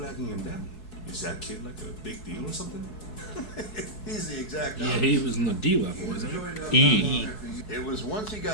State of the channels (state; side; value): late; right; 4.7 ms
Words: him down? Is that kid like a big deal or something? He's the exact Yeah, he was in the D level, wasn't it? E. It was once he